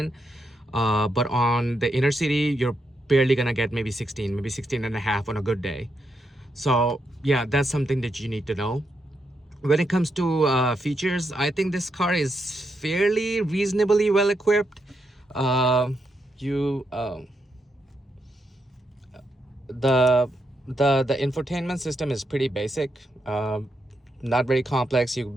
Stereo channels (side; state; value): both; normal; correlation 0.82